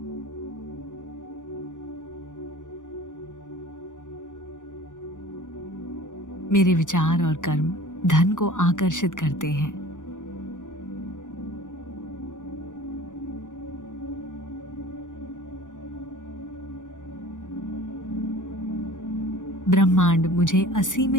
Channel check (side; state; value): right; late; 0.87 ms